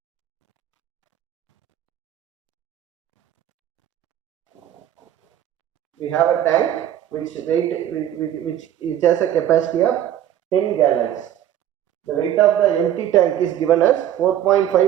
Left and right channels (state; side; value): quieter; left; 11.2 dB